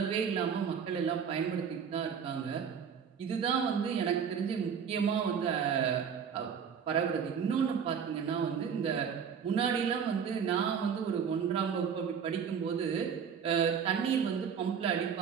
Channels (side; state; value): left; quieter; 7.2 dB